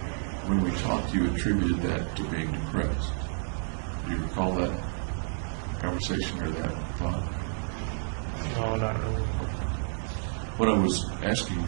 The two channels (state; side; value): silent; left; 58 dB below the other